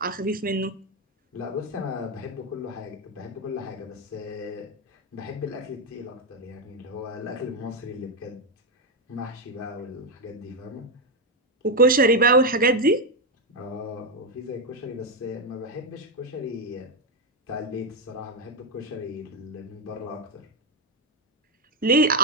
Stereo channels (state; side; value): normal; both; correlation 0.06